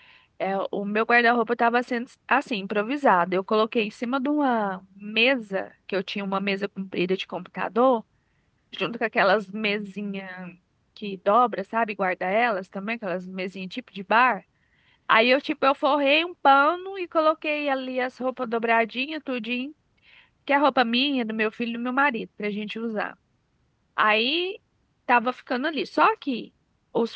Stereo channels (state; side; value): identical; both; correlation 1.00